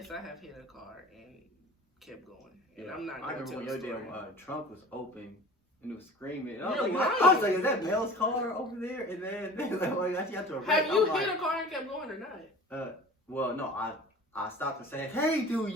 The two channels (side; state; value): both; normal; correlation 0.41